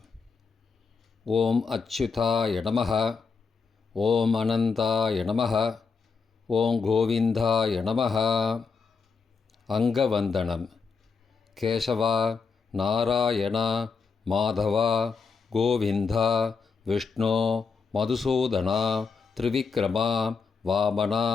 ஓம் அச்சுதாய நமஹ. ஓம் அனந்தாய நமஹ. ஓம் கோவிந்தாய நமஹ. அங்கவந்தனம். கேசவா, நாராயணா, மாதவா, கோவிந்தா, விஷ்ணு, மதுசூதனா, திரிவிக்ரமா, வாமனா,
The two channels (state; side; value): quieter; right; 5.1 dB